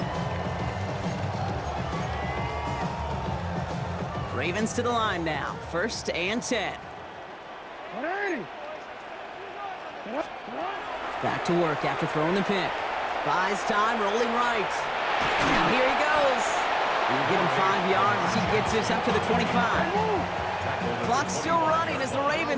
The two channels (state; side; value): identical; both; correlation 1.00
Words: line. Ravens to the line now. 1st and 10. Back to work after throwing the pick. Buys time, rolling right. Now here he goes. He'll get him 5 yards as he gets this up to the 25. Clock's still running as the